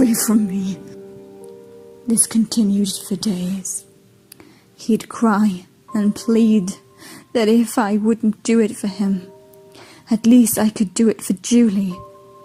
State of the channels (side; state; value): both; identical; correlation 1.00